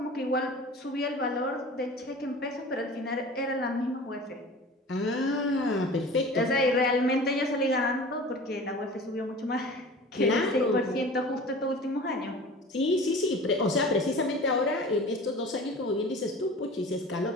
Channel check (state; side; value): normal; both; correlation 0.40